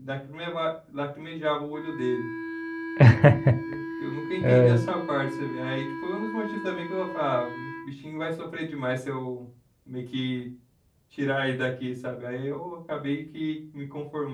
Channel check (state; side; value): identical; both; correlation 1.00